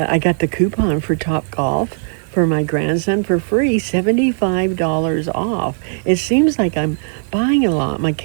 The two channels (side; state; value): left; silent; digital silence